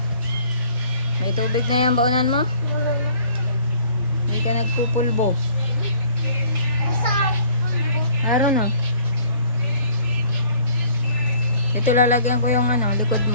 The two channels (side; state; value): both; inverted; correlation -0.56